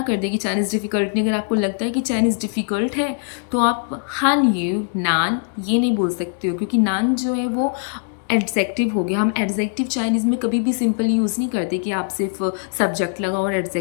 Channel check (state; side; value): silent; right; digital silence